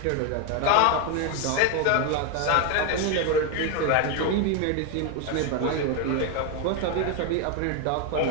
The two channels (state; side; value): different; both; correlation 0.01